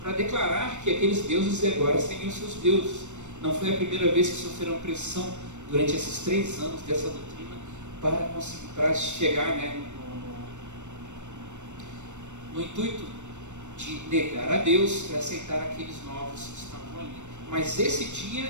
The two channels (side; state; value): left; late; 0.84 ms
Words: para declarar que aqueles deuses agora seriam seus deuses. Não foi a primeira vez que sofreram pressão durante esses 3 anos dessa doutrina para chegar no intuito de negar a Deus e aceitar aqueles novos que estavam ali. Mas esse